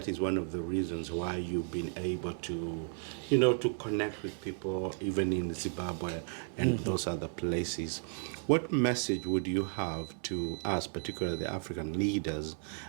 is one of the reasons why you've been able to, to connect with people, even in Zimbabwe and those other places. What message would you have to us, particularly the African leaders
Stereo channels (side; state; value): left; silent; 55 dB below the other